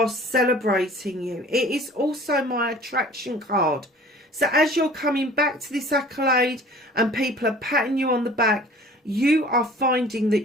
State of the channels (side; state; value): both; normal; correlation 0.47